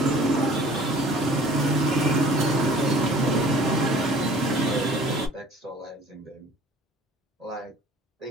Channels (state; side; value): normal; both; correlation 0.50